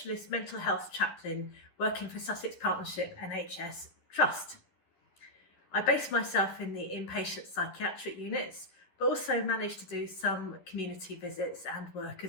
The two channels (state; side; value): late; right; 11 ms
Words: mental health chaplain working for Sussex Partnership NHS Trust. I base myself in the inpatient psychiatric units, but also manage to do some community visits and work